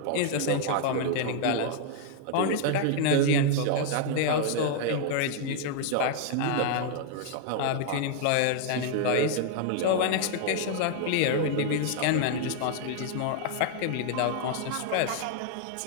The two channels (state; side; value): different; both; correlation 0.00